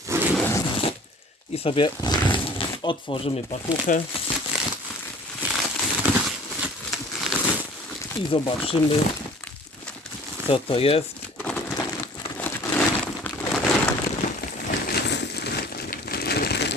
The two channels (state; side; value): normal; both; correlation 0.47